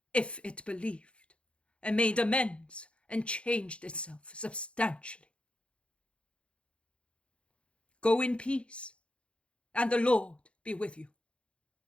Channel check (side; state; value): right; late; 0.059 ms